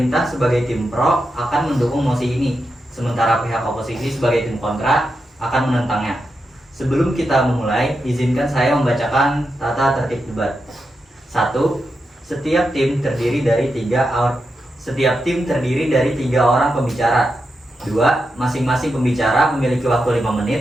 sebagai tim pro akan mendukung mosi ini, sementara pihak oposisi sebagai tim kontra akan menentangnya. Sebelum kita memulai, izinkan saya membacakan tata tertib debat. 1. Setiap tim terdiri dari 3 orang pembicara. 2. Masing-masing pembicara memiliki waktu 5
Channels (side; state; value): both; normal; correlation 0.87